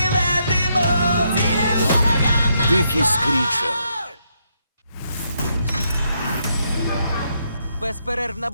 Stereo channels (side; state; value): both; inverted; correlation -0.77